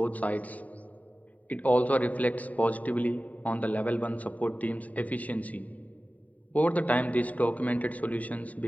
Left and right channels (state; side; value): late; right; 0.071 ms